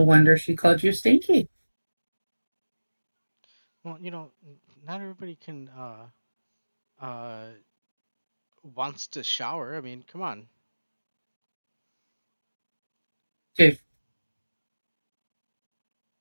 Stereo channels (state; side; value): inverted; both; correlation -1.00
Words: wonder she called you stinky. Well, not everybody can wants to shower. I mean, come on. Dude,